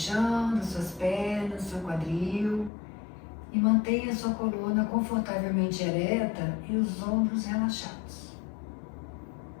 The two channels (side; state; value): right; drops out; at 2.7 s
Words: das suas pernas, seu quadril e mantenha sua coluna confortavelmente ereta e os ombros relaxados.